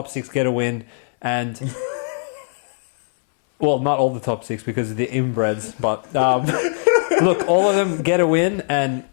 six get a win, and well, not all the top six because of the inbreds, but look, all of them get a win, and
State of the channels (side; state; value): right; silent; 65 dB below the other